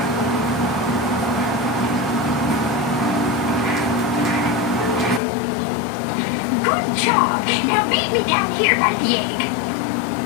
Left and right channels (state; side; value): drops out; right; at 5.2 s